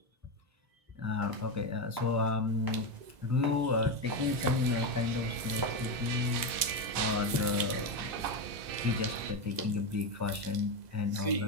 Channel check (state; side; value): late; left; 2.0 ms